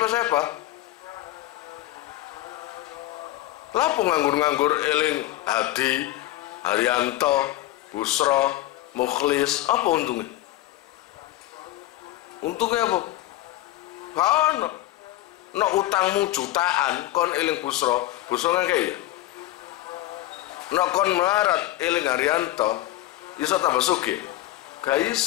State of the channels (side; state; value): right; quieter; 15.6 dB